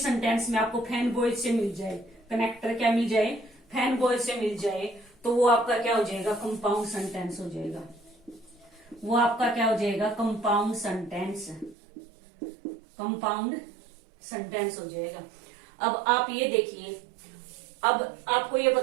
में आपको फैन बॉयज से मिल जाए, कनेक्टर क्या मिल जाए? फैन बॉयज से मिल जाए, तो वो आपका क्या हो जाएगा? कंपाउंड सेंटेंस हो जाएगा। वो आपका क्या हो जाएगा? Compound sentence. कंपाउंड सेंटेंस हो जाएगा। अब आप ये देखिए, अब आपको ये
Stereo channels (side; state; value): left; drops out; at 11.8 s